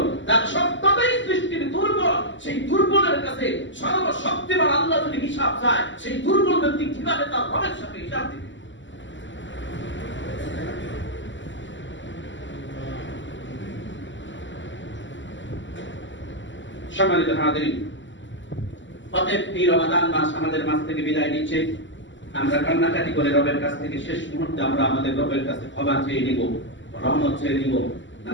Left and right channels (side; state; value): right; late; 0.54 ms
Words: তার সত্যতাই সৃষ্টির দুর্বল। সেই দুর্বলের কাছে সর্বশক্তিমান আল্লাহ যদি হিসাব চায়, সেই দুর্বল ব্যক্তি কিভাবে তার রবের সাথে হিসাব দিবে? সম্মানিত হাজিরিন, অতএব এই রমাদান মাস আমাদের মাঝ থেকে বিদায় নিচ্ছে। আমরা কান্নাকাটি করে রবের কাছ থেকে শেষ মুহূর্তে আমরা আমাদের রবের কাছে ক্ষমা চেয়ে নিব, রহমত চেয়ে নিব,